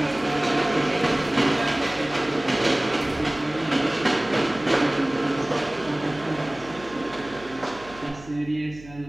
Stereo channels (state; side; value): noise; right; hum, 19 dB below the sound